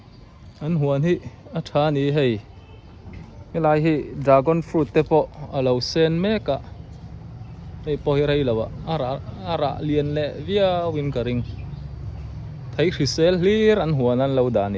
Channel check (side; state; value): both; identical; correlation 1.00